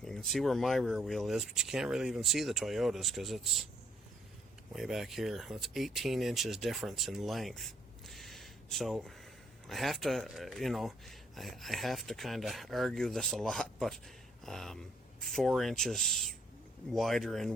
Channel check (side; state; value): both; normal; correlation 0.67